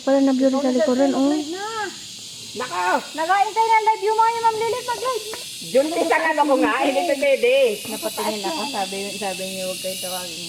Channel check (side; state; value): both; identical; correlation 1.00